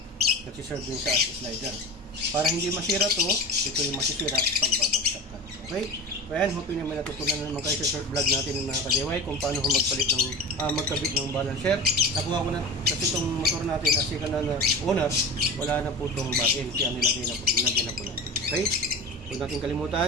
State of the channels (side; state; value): both; normal; correlation 0.30